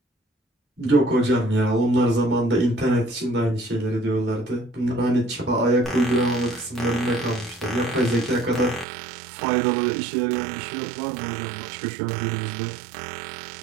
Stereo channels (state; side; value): drops out; left; at 8.8 s